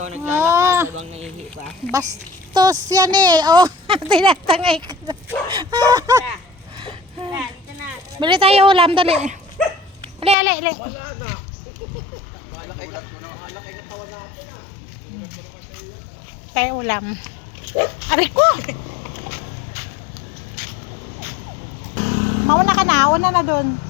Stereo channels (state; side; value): drops out; right; at 10.4 s